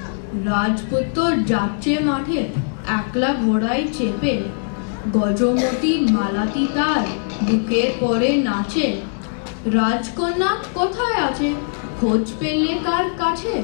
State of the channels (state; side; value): silent; right; digital silence